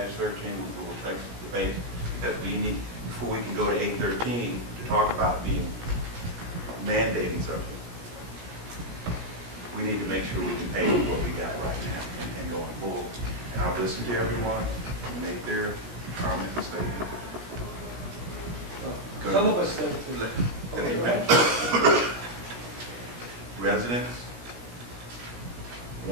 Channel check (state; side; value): late; left; 17 ms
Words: will take the debate, because we need, before we can go to 8-13, to talk about being mandating something, we need to make sure we can pay what we got right now and going forward. And I've listened to everyone, and make their comments and statements. Good. Some of us think. Let me finish. Residents